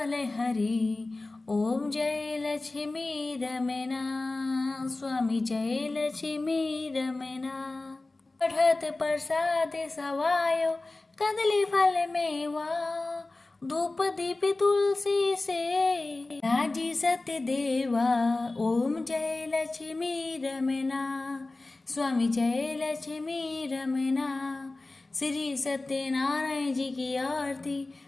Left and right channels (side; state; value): right; quieter; 3.1 dB